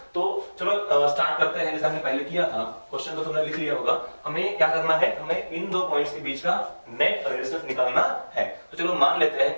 तो चलो स्टार्ट करते हैं, जैसे हमने पहले किया था। क्वेश्चन तो तुमने लिख लिया होगा। हमें क्या करना है, हमें इन दो पॉइंट्स के बीच का नेट रेजिस्टेंस निकालना है। तो चलो मान लेते हैं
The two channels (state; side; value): inverted; both; correlation -1.00